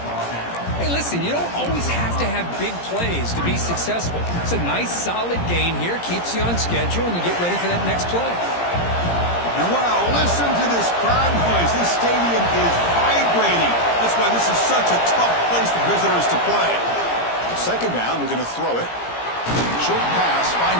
Hey, listen, you don't always have to have big plays to be successful. It's a nice, solid gain here. Keeps you on schedule, and you get ready for that next play. And wow, listen to this crowd noise. This stadium is vibrating. That's why this is such a tough place for visitors to play. 2nd down, we're going to throw it. Short pass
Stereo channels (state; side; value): late; right; 17 ms